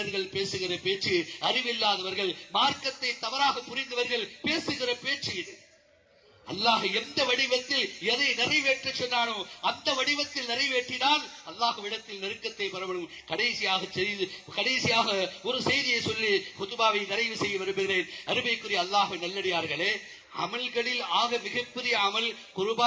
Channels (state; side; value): identical; both; correlation 1.00